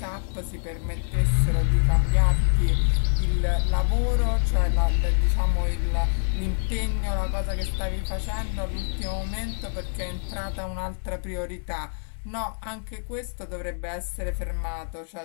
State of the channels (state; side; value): silent; right; 61 dB below the other